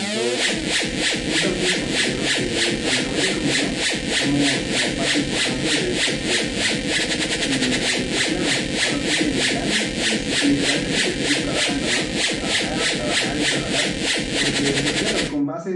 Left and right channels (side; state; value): both; identical; correlation 1.00